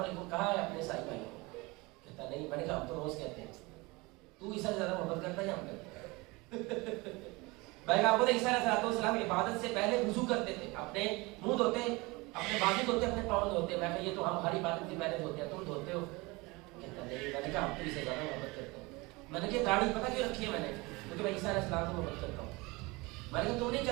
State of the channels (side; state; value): left; quieter; 24.3 dB